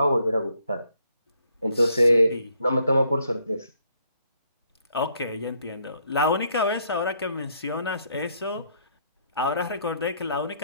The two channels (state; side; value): inverted; both; correlation -0.69